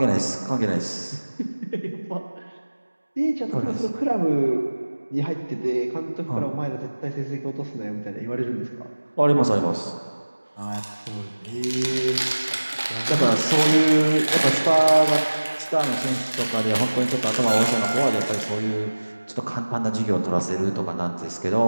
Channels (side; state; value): both; inverted; correlation -1.00